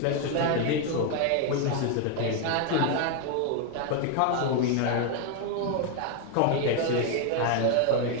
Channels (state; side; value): different; both; correlation 0.01